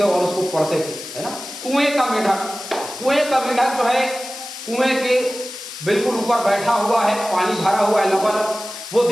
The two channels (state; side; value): noise; left; hiss, 11 dB below the sound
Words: और उसको पढ़ते थे, है ना। कुएं का मेढक जो है कुएं के बिल्कुल ऊपर बैठा हुआ है, पानी भरा हुआ है लबालब। वो